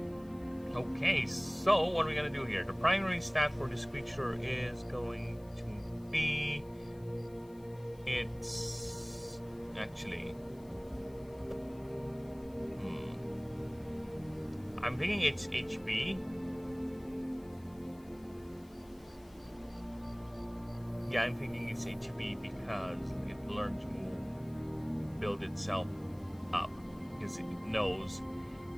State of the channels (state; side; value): noise; left; hiss, 27 dB below the sound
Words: go. Okay, so what are we gonna do here? The primary stat for this creature is going to be it's actually. I'm thinking it's HP. Yeah, I'm thinking it's HP because it learned to build itself up. Because it knows